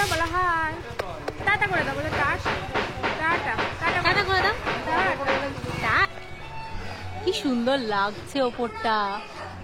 বলো হাই। টাটা করে দাও, বলো টাটা টাটা টাটা টাটা করে দাও। টাটা। কি সুন্দর লাগছে ওপরটা,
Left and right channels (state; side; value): identical; both; correlation 1.00